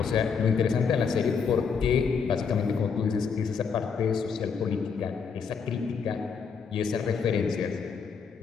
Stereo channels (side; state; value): right; quieter; 6.0 dB